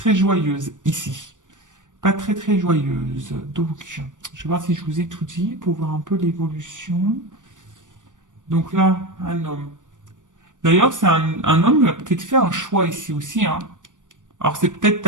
joyeuse ici. Pas très très joyeuse. Donc, je vais voir si je vous ai tout dit pour voir un peu l'évolution. Donc là, un homme. D'ailleurs, c'est un homme qui a peut-être fait un choix ici aussi, hein. Alors c'est peut-être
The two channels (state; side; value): late; left; 0.87 ms